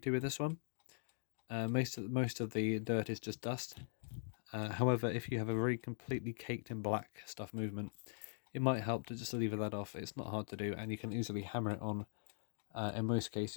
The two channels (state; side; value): silent; right; digital silence